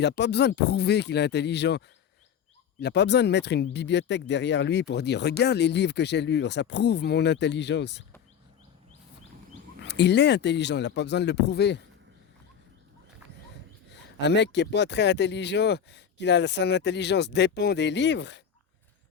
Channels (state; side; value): quieter; right; 8.1 dB